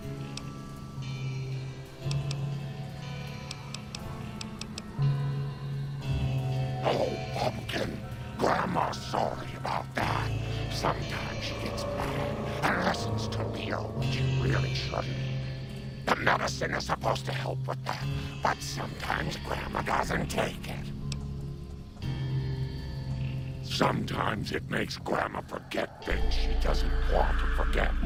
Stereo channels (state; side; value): identical; both; correlation 1.00